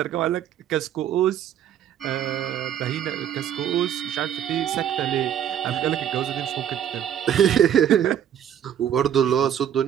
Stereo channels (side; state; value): left; quieter; 9.9 dB